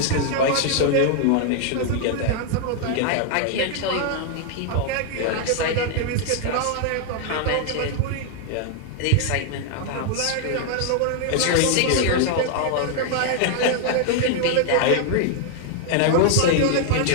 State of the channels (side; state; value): both; different; correlation 0.00